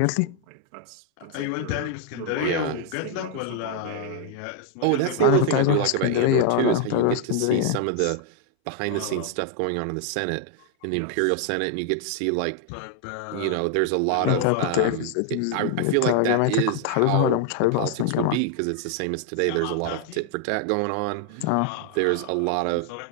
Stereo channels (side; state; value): both; different; correlation 0.00